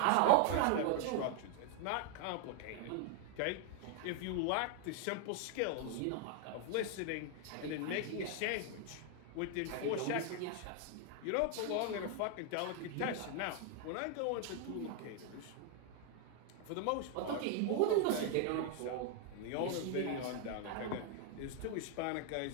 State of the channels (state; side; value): different; both; correlation 0.01